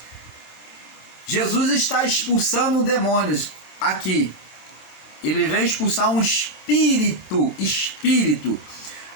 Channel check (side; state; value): right; late; 26 ms